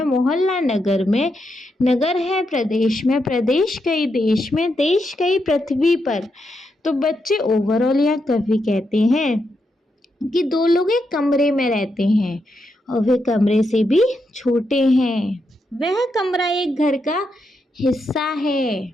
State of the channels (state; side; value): normal; both; correlation 0.83